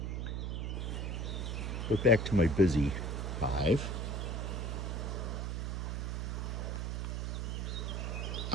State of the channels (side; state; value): right; noise; hum, 1 dB below the sound